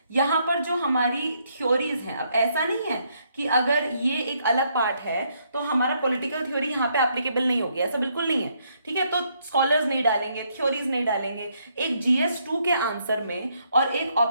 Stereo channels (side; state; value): both; inverted; correlation -0.73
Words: यहाँ पर जो हमारी थ्योरीज हैं, अब ऐसा नहीं है कि अगर ये एक अलग पार्ट है तो हमारा पॉलिटिकल थ्योरी यहाँ पे एप्लीकेबल नहीं होगी, ऐसा बिल्कुल नहीं है। ठीक है, तो स्कॉलर्स नहीं डालेंगे, थ्योरीज नहीं डालेंगे। एक GS2 के आंसर में और एक